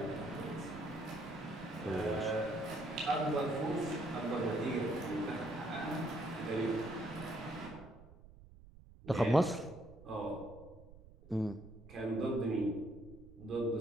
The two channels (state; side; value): noise; right; rumble, 20 dB below the sound